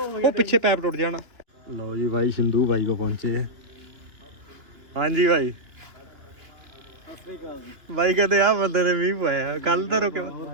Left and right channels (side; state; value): left; late; 2.9 ms